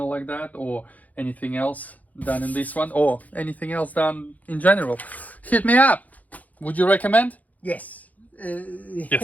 like that, or anything else done in this one, or anything else done in general, hit me up. Would you recommend? Yes.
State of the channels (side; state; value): right; late; 0.077 ms